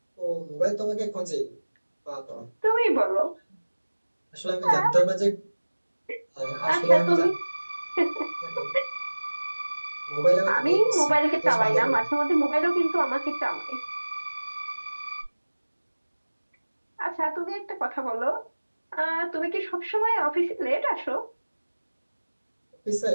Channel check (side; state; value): both; inverted; correlation -1.00